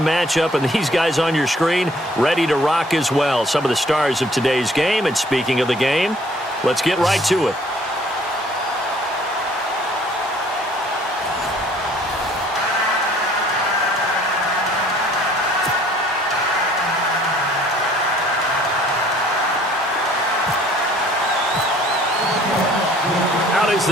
matchup, and these guys on your screen ready to rock as well. Some of the stars of today's game, and speaking of the game, let's get right to it. Is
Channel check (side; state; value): both; normal; correlation 0.57